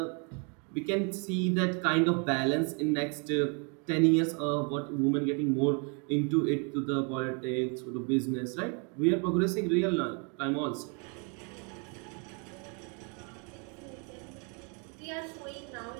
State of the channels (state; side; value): quieter; left; 36.3 dB